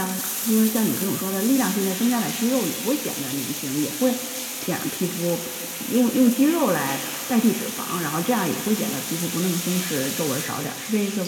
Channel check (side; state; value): both; identical; correlation 1.00